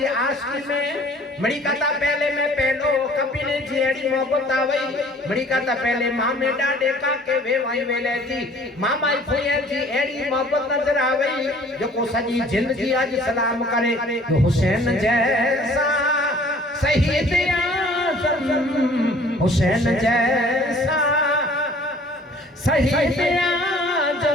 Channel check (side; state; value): both; normal; correlation 0.53